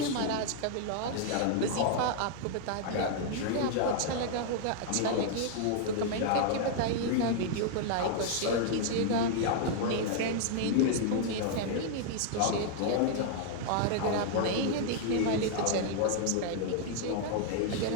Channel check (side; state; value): both; different; correlation -0.01